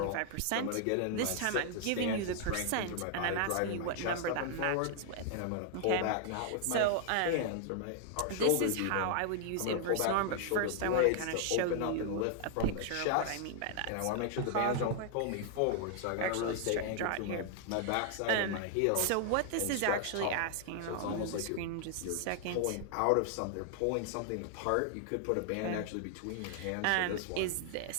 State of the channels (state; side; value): different; both; correlation 0.00